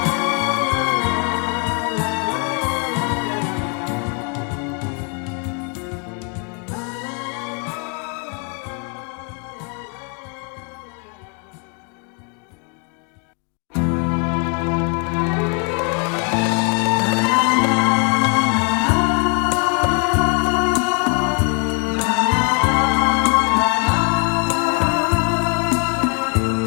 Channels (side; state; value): right; quieter; 38.0 dB